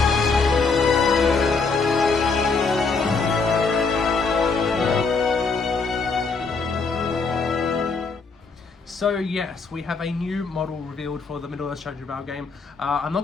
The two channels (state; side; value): quieter; right; 4.5 dB